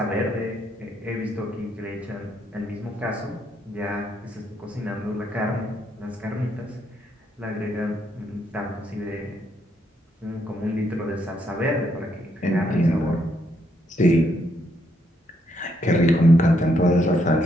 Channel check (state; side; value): normal; both; correlation 0.75